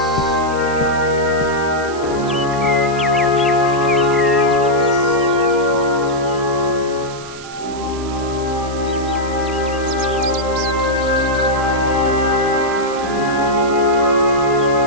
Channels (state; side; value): noise; right; hiss, 16 dB below the sound